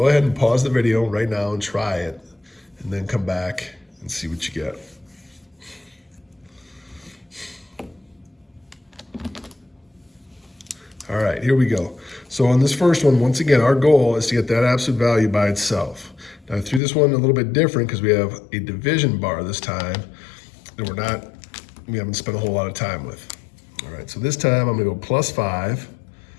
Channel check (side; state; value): right; drops out; at 16.8 s